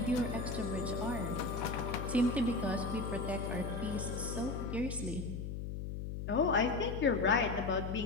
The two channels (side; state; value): left; noise; hum, 5 dB below the sound